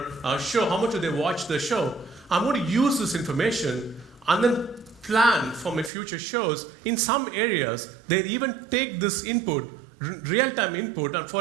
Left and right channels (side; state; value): left; drops out; at 5.9 s